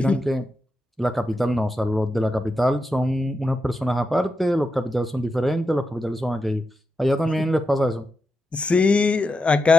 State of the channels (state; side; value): normal; both; correlation 0.87